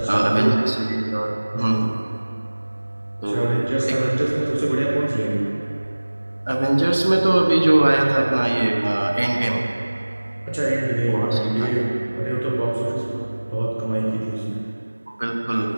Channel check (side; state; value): both; inverted; correlation -1.00